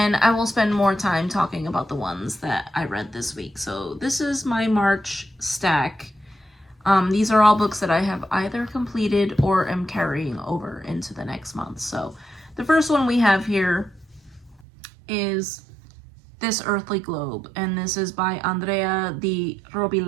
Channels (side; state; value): left; drops out; at 14.7 s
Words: I will spend more time talking about the ones that I read this week. So this is my March stack. These are all books that I have either completed or am carrying over into the next month. So the first one we have here is This Earthly Globe, and this is by Andrea Di